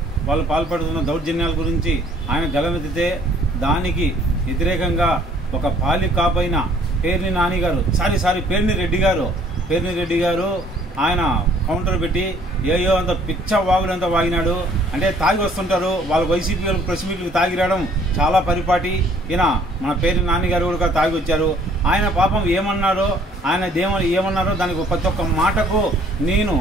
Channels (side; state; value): both; normal; correlation 0.59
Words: వాళ్ళు పాల్పడుతున్న దౌర్జన్యాల గురించి ఆయన గలమెత్తితే దానికి వ్యతిరేకంగా ఒక పాలి కాపైన పేర్ని నాని గారు పేర్ని రెడ్డి గారు ఆయన కౌంటర్ పెట్టి ఏయో అంత పిచ్చ వాగుడంతా వాగినాడు. అంటే తాగి వస్తుంటారు వాళ్ళు, వైసీపీ వాళ్ళు ప్రెస్ మీట్లకు తాగి రావడం చాలా పరిపాటి. ఈయన మన పేరు నాన్నగారు కూడా తాగి వచ్చారు. ఆయన పాపం ఏమన్నారో, ఆయన ఏమన్నారో దానికి ప్రతి ఒక్క మాటకు